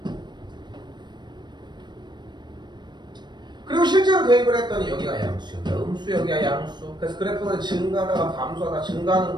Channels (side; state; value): left; late; 0.22 ms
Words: 그리고 실제로 대입을 했더니 여기가 양수, 여기가 음수, 여기가 양수. 그래서 그래프는 증가하다가 감소하다